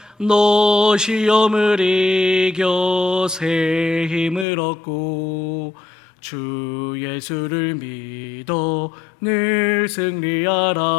너 시험을 이겨 새 힘을 얻고 주 예수를 믿어 늘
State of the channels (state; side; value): drops out; right; at 4.5 s